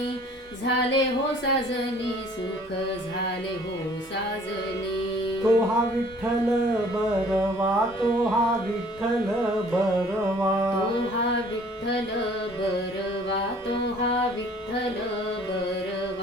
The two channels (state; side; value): normal; both; correlation 0.54